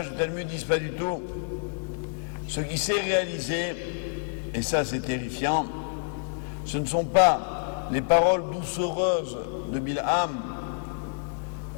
du Talmud disent pas du tout. Ce qui s'est réalisé, et ça c'est terrifiant, ce ne sont pas les paroles doucereuses de Bilham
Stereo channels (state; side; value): silent; right; digital silence